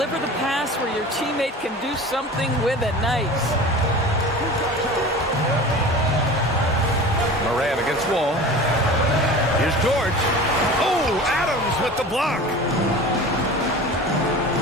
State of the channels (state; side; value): normal; both; correlation 0.37